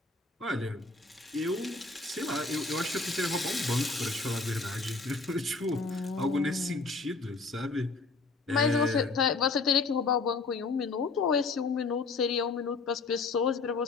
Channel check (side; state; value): right; quieter; 4.0 dB